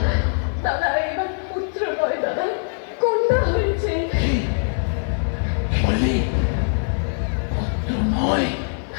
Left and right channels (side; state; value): right; silent; 64 dB below the other